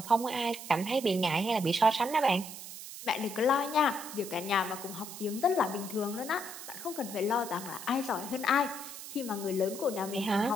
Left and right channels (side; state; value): right; noise; hiss, 11 dB below the sound